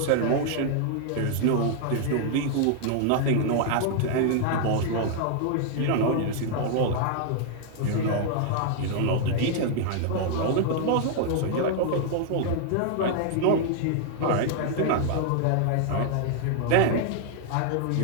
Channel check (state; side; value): different; both; correlation 0.00